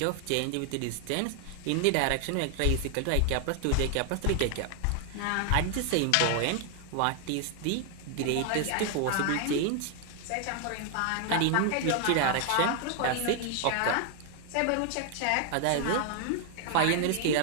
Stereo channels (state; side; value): different; both; correlation 0.00